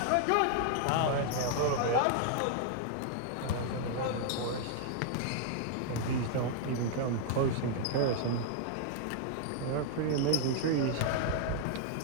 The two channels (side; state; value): both; different; correlation 0.00